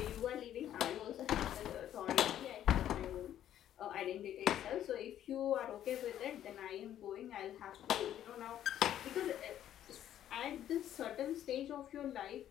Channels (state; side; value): quieter; right; 11.3 dB